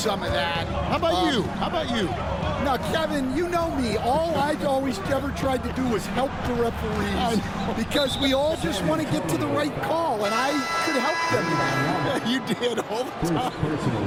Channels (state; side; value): identical; both; correlation 1.00